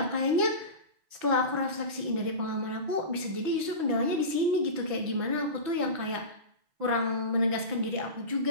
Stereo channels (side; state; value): left; late; 6.1 ms